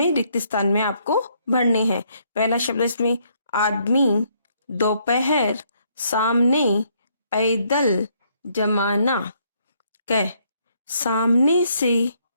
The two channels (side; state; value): both; inverted; correlation -0.70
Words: रिक्त स्थान में आपको भरने हैं। पहला शब्द इसमें आदमी, दोपहर, सामने, पैदल, जमाना। कै, सामने से